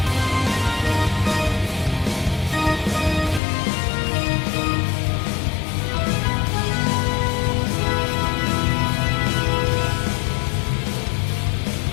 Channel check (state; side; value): drops out; right; at 3.4 s